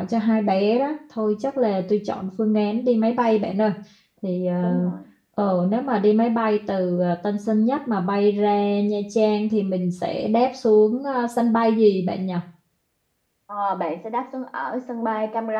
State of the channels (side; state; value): both; identical; correlation 1.00